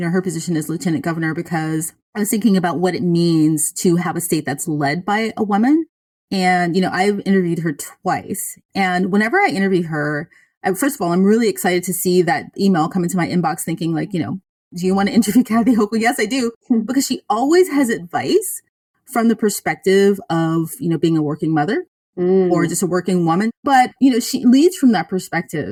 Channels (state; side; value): identical; both; correlation 1.00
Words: position as lieutenant governor because I was thinking about what it means to have a state that's led by a woman. And, I've interviewed her twice. And whenever I interview her, first of all, I'm really excited to see that email come into my inbox thinking like, do you want to interview Kathy Hochul? Yes, I do. Because she always has advice from the perspective of, being a working mother or just a working woman. But, she leads from that